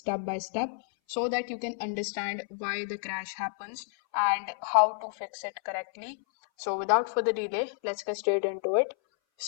by step so that you can understand why the crash happens and how to fix it correctly. So without further delay, let's get straight into it.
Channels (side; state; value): right; silent; 58 dB below the other